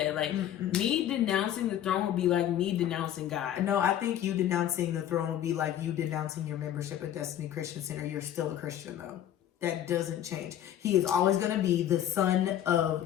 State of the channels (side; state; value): right; quieter; 11.1 dB